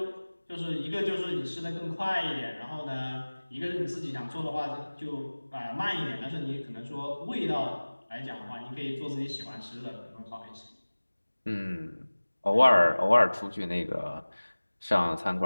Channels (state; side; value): inverted; both; correlation -1.00